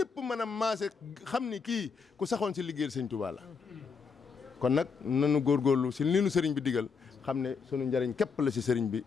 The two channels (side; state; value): right; quieter; 5.5 dB